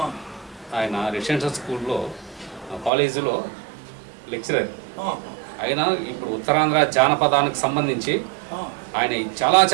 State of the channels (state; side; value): drops out; left; at 2.9 s